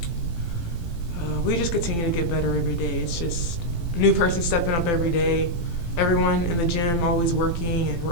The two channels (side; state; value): right; late; 18 ms